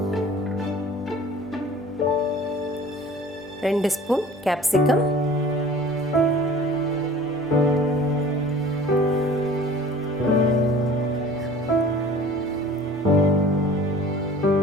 ரெண்டு ஸ்பூன் கேப்சிகம்,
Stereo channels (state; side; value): normal; both; correlation 0.45